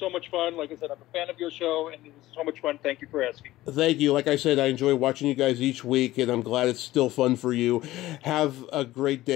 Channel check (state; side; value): quieter; right; 16.4 dB